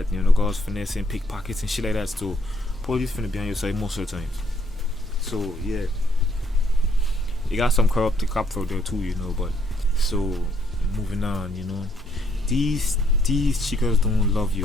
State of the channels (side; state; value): both; normal; correlation 0.69